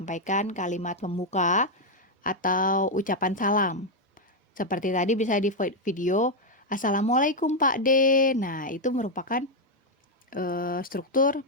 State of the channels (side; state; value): both; normal; correlation 0.01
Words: kalimat pembuka atau ucapan salam. Seperti tadi bisa di video, Assalamualaikum Pak D. Nah, itu merupakan struktur